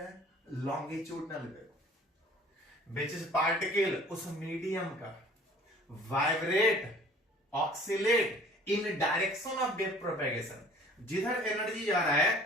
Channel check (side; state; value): both; normal; correlation 0.50